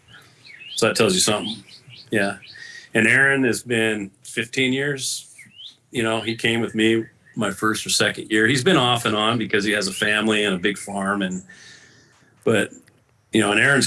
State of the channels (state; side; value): identical; both; correlation 1.00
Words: So that tells you something. Yeah. And Aaron has been 15 years. He came with me my first or second year. He's been off and on because he has a family and a big farm, but and